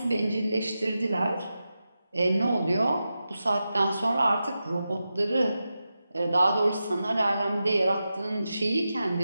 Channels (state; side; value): inverted; both; correlation -0.91